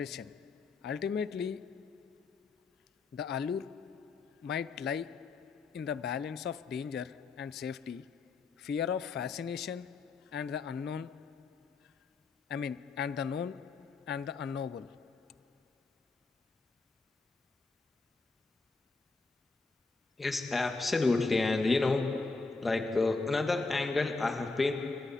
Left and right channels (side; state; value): right; quieter; 4.0 dB